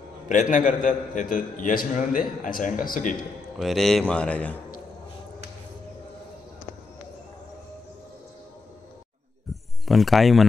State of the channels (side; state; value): right; quieter; 4.1 dB